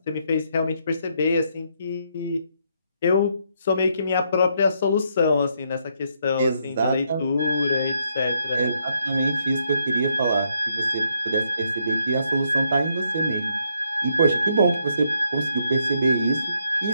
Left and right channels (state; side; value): inverted; both; correlation -0.75